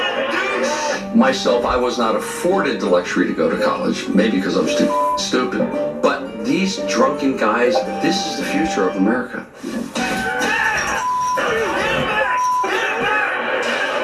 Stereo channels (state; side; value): identical; both; correlation 1.00